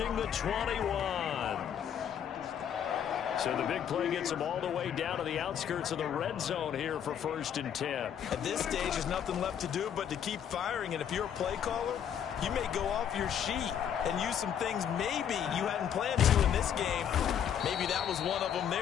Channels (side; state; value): right; quieter; 8.9 dB